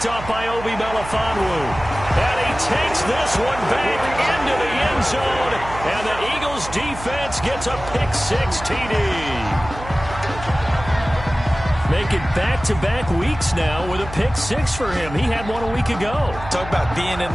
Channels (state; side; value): noise; right; hum, 12 dB below the sound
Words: off by Obi Melifonwu. And he takes this one back into the end zone. And the Eagles defense gets a pick-6 TD. Making back-to-back weeks now with a pick-6 for him. He had one a week ago. Talk about being in